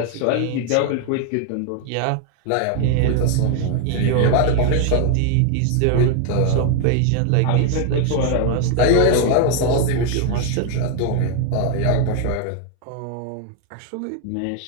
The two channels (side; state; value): both; different; correlation 0.00